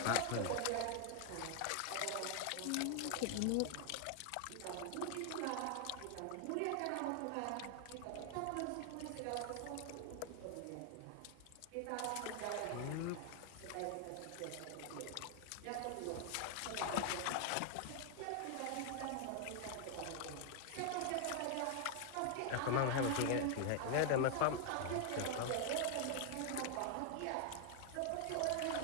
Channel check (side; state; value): both; different; correlation 0.00